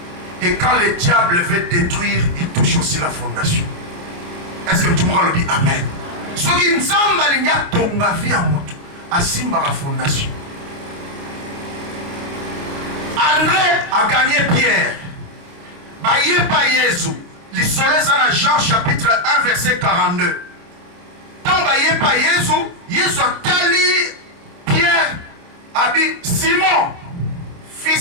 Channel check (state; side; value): late; left; 29 ms